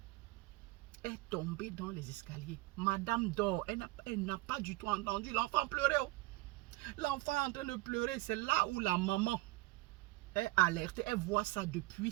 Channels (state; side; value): quieter; left; 20.4 dB